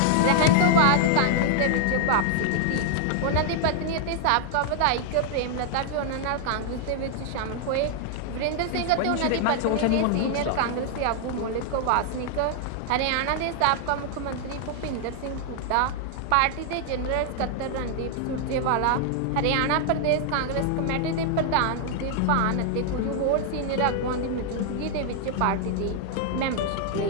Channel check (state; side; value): different; both; correlation 0.00